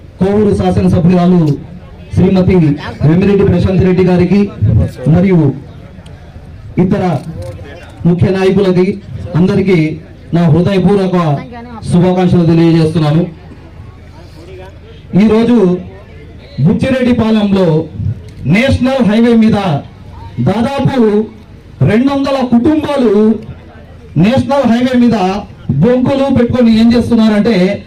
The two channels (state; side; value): identical; both; correlation 1.00